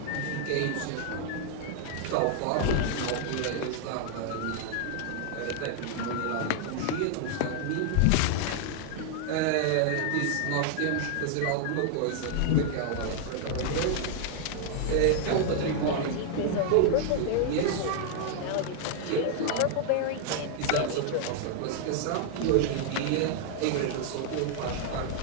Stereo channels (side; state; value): both; different; correlation 0.00